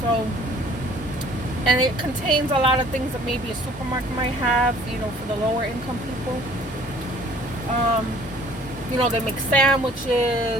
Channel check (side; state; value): both; normal; correlation 0.54